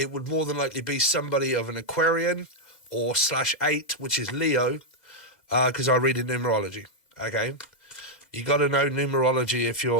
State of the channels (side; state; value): right; late; 2.0 ms